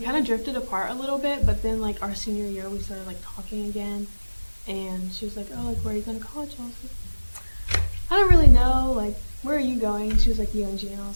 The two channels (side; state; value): both; inverted; correlation -1.00